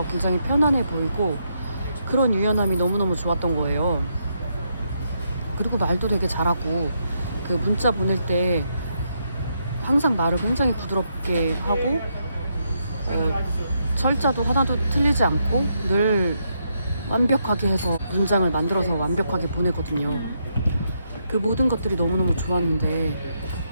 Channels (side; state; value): both; inverted; correlation -0.79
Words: 굉장히 편안해 보이고 그런 유연함이 너무너무 좋았던 거예요. 그리고 말도 되게 잘하고 그 문자 보낼 때 항상 말을 굉장히 부드럽게 하고 철자도 하나도 틀리지 않고 늘 완벽하게 해서 문장을 만들어서 완벽하게 보내거든요. 그 모든 것들이 너무너무 좋았는데